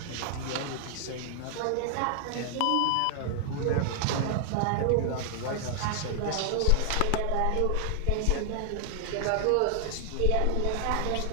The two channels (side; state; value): both; different; correlation 0.00